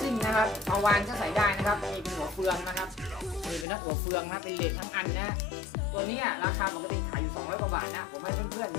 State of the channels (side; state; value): right; drops out; at 3.7 s